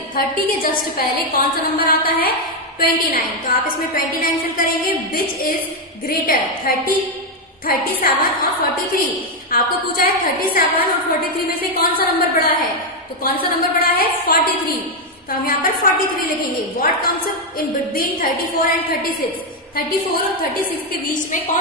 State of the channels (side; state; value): both; normal; correlation 0.03